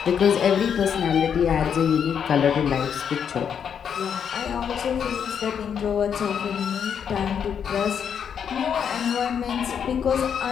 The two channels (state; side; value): quieter; right; 7.8 dB